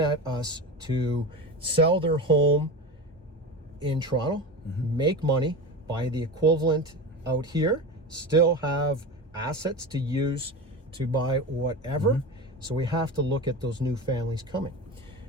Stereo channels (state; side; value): normal; both; correlation 0.26